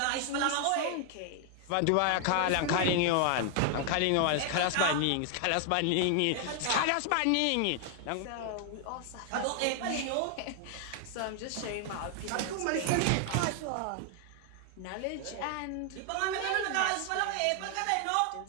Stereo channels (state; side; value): different; both; correlation 0.00